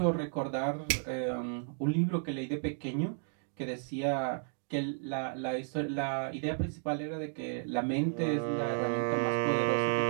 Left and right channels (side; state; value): left; silent; digital silence